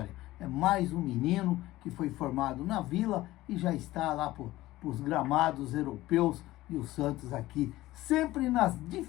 É mais um menino que foi formado na Vila e já está lá para os gramados europeus, e o Santos aqui sempre nas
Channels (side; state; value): right; quieter; 16.9 dB